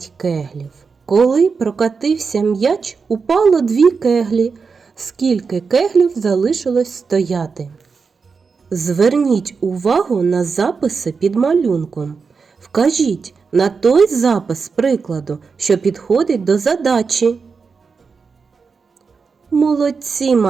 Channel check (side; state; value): left; quieter; 5.1 dB